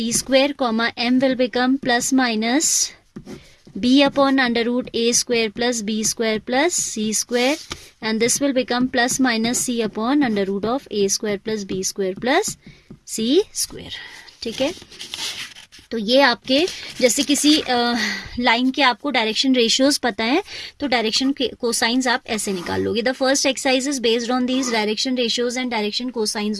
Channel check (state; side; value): identical; both; correlation 1.00